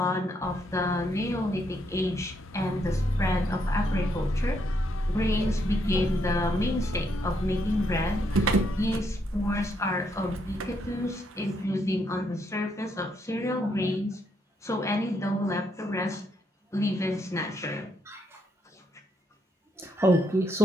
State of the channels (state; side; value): normal; both; correlation 0.76